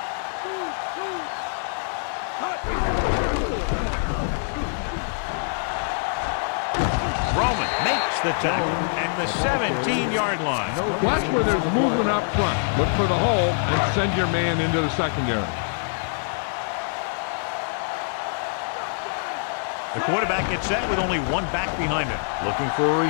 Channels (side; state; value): right; silent; digital silence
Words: Roman makes the tackle at the 17-yard line. Watch where there's movement up front. Look for the hole and send your man into the secondary. The quarterback gets set with only one back behind him. Looking for a